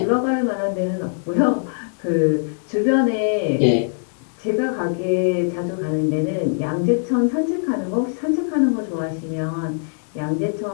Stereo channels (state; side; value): silent; right; digital silence